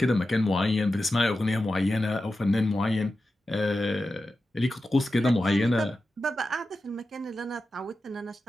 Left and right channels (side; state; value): both; normal; correlation 0.92